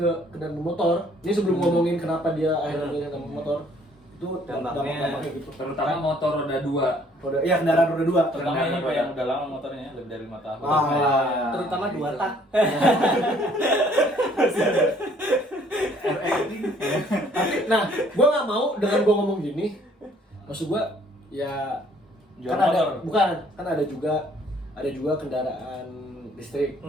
kendaraan bermotor, ini sebelum ngomongin kenapa dia akhirnya milih kendaraan bermotor, itu dampaknya gitu. Terutama motor roda 2. Iya, kendaraan roda 2. Terutama ini Pak yang udah lama motornya, lebih dari 5 tahun. Terutama 2 tak. Nah, gue nggak mau dengan gue ngomong gini. Maksud gue ya Jual kan motor. ada juga kendaraan listrik.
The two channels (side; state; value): both; normal; correlation 0.61